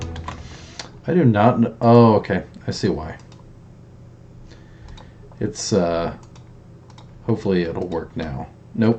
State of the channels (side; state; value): both; identical; correlation 1.00